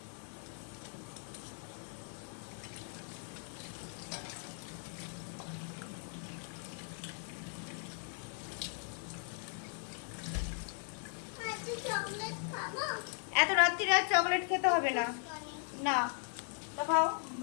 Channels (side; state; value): right; silent; 52 dB below the other